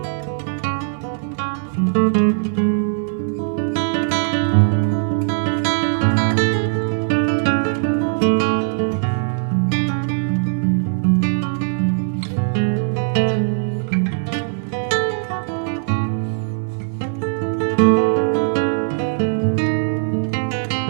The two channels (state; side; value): silent; left; 65 dB below the other